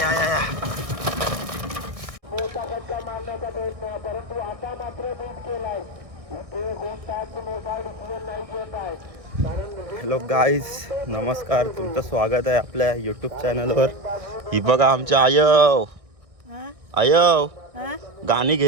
आया, आया. हॅलो गाईज, नमस्कार. तुमचं स्वागत आहे आपल्या यूट्यूब चॅनलवर. ही बघा आमच्या आयव आयव गाणी घे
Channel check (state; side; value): late; left; 1.6 ms